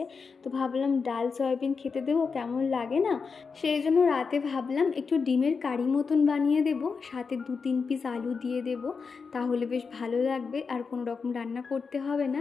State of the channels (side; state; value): right; quieter; 5.2 dB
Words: তো ভাবলাম ডাল সয়াবিন খেতে দেবো, কেমন লাগে না, সেই জন্য রাতে ভাবলাম একটু ডিমের কারি মতন বানিয়ে দেবো, সাথে 2-3 পিস আলু দিয়ে দেবো, তাহলে বেশ ভালো লাগবে, আর কোনো রকম রান্না করতে হবে না।